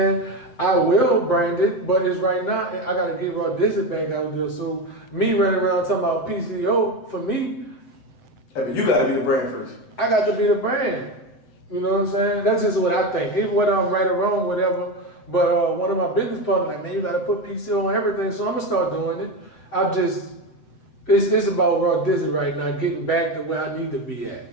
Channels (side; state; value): right; late; 7.8 ms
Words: I will brand it, but it's right now, I gotta get Raw Disney back out there. So me running around talking about PCO, for me, you gotta be the brand first. I got to be the brand. You know what I'm saying? That's just what I think. Even whether I'm right or wrong, whatever. But one of my business partners like, man, you gotta put PCO on everything. So I'm gonna start doing it. It's about Raw Disney right now, getting back to where I need to be at.